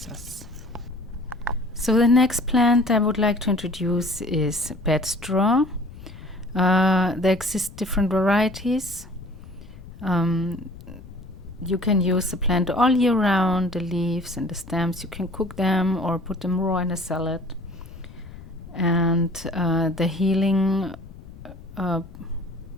So the next plant I would like to introduce is bedstraw. There exist different varieties. You can use the plant all year round, the leaves and the stems. You can cook them or put them raw in a salad. And the healing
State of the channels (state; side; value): noise; left; rumble, 17 dB below the sound